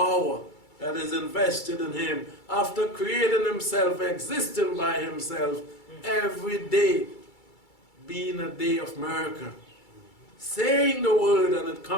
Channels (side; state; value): right; late; 2.3 ms